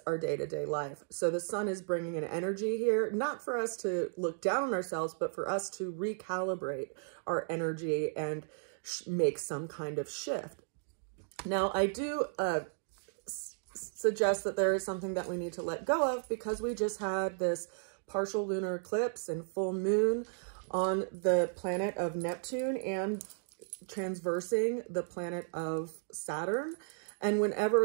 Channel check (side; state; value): left; silent; digital silence